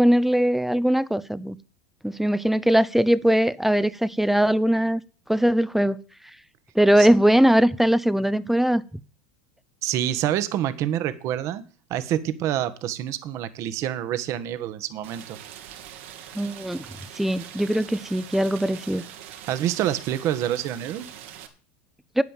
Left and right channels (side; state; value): both; normal; correlation 0.89